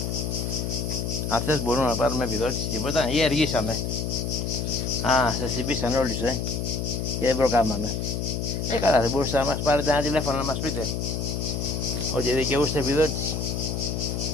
Αυτές μπορούμε να πάρουμε επιδότηση, τίποτα, ή αργήσαμε? Α, σας συμπήσαν όλοι σου, και δεν προκάμαμε. Καλά, δεν μπορούσατε να μας πάρετε ένα τηλέφωνο να μας πείτε ότι δικαιούστε επιδότηση?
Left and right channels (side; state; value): left; noise; hum, 2 dB below the sound